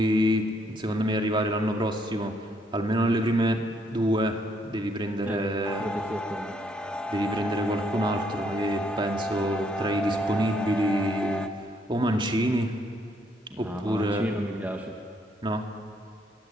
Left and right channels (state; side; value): normal; both; correlation 0.71